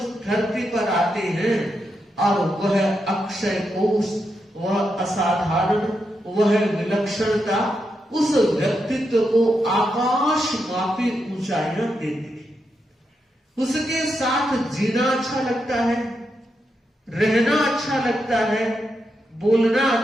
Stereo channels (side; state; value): both; normal; correlation 0.84